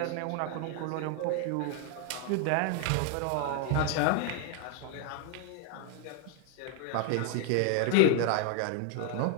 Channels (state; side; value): different; both; correlation 0.00